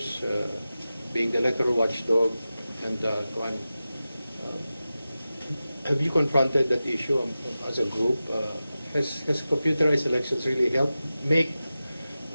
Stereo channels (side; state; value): both; inverted; correlation -0.94